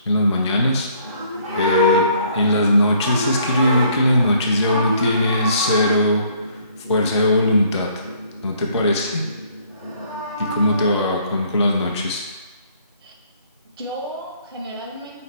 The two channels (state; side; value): inverted; both; correlation -0.62